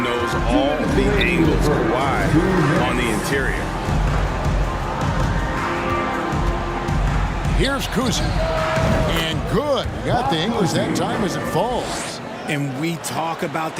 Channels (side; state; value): both; identical; correlation 1.00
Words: knows all the angles are wide on the interior. Here's Cousy. And good. Got the English that time as it falls. And we talk about